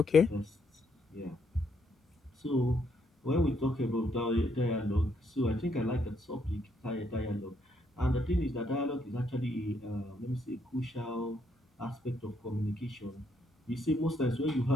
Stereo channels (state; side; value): normal; both; correlation 0.74